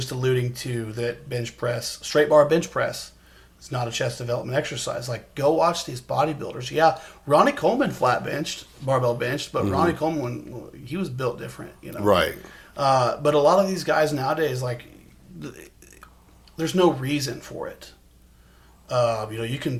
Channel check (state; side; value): identical; both; correlation 1.00